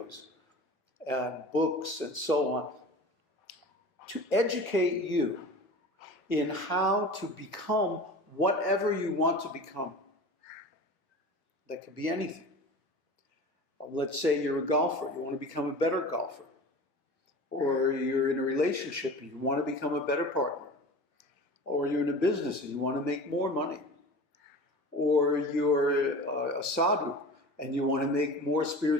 and books and so on to educate you in how to become whatever you want to become. That could be anything. Let's say you're a golfer, you want to become a better golfer. Or you're in a relationship and you want to become a better partner. Or you're in a business and you want to make more money. Or you're a sadhu and you want to make more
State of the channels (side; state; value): both; normal; correlation 0.36